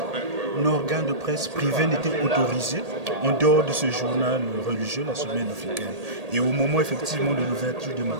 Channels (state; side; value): late; left; 1.8 ms